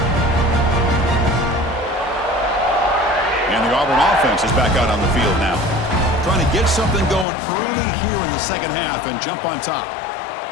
And the Auburn offense is back out on the field now. Trying to get something going early here in the second half and jump on top.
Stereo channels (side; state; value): right; drops out; at 7.2 s